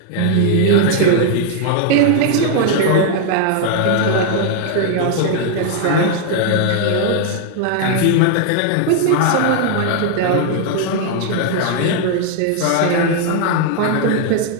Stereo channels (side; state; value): both; different; correlation 0.00